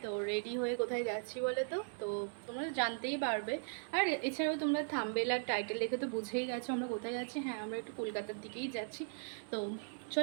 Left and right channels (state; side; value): silent; left; digital silence